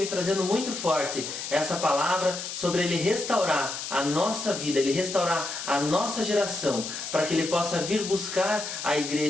trazendo muito forte essa palavra sobre Ele restaurar a nossa vida, Ele restaurar a nossa geração, para que Ele possa vir buscar a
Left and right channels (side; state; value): left; noise; hiss, 6 dB below the sound